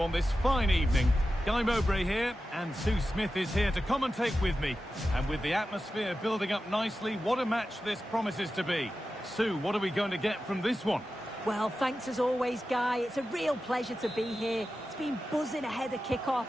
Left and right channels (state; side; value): normal; both; correlation 0.93